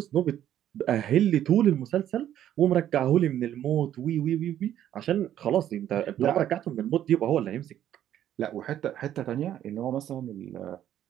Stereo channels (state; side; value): quieter; left; 11.3 dB